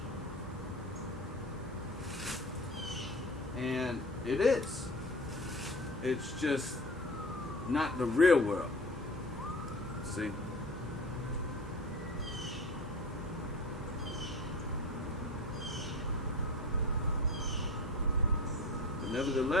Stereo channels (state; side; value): normal; both; correlation 0.36